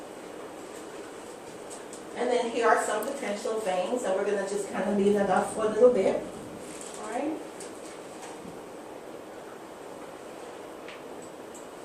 And then here are some potential veins, and we're going to just kind of leave that up for a little bit. All right.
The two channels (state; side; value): identical; both; correlation 1.00